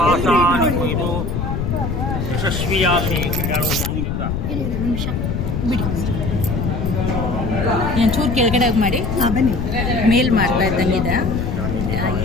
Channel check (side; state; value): left; noise; rumble, 2 dB below the sound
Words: ನಿಮ್ಮ ಇದು ಯಶಸ್ವಿಯಾಗಲಿ. ನಿಮಿಷ ಬಿಡಿ, ಒಂಚೂರು ಕೆಳಗಡೆ ಮಾಡಿ. ಬನ್ನಿ. ಮೇಲ್ ಮಾಡ್ತಾ ಇದ್ದಂಗಿದೆ.